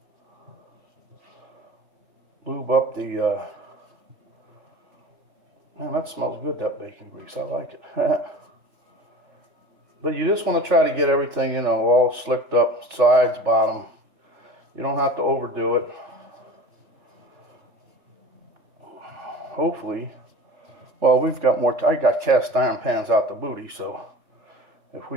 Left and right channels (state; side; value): late; left; 3.4 ms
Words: lube up the, man, that smells good, that bacon grease. I like it. But you just want to try to get everything, you know, all slicked up, sides, bottom. You don't have to overdo it. Hopefully, well, we've got more, I got cast iron pans out the booty, so if